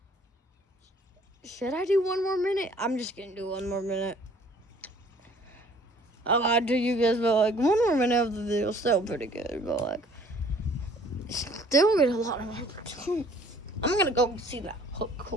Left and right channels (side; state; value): both; normal; correlation 0.55